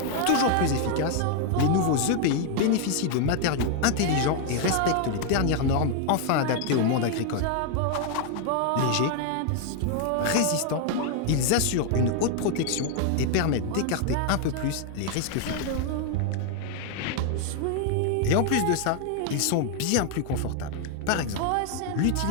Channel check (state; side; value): different; both; correlation 0.00